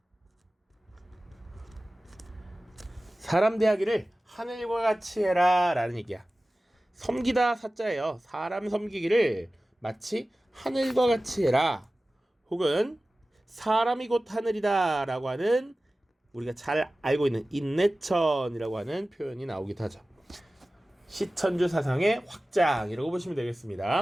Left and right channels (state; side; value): normal; both; correlation 0.96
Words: 사람 대하기를 하늘과 같이 해라 라는 얘기야. 섬기다 사자예요. 사람 섬기기를 마치 하늘과 같이 해라. 혹은 사람이 곧 하늘이다 라고 하는 우리가 잘 알고 있는 인내천이라고 하는 표현이 나오기도 하죠. 시천주 사상의 확장이라고 보시면